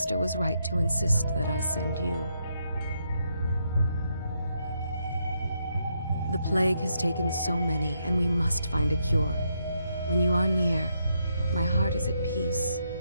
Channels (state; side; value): inverted; both; correlation -0.78